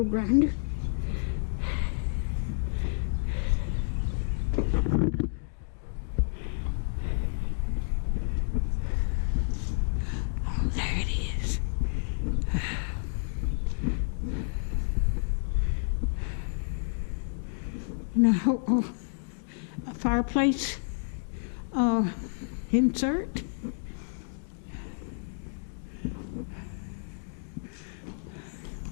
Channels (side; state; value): right; silent; digital silence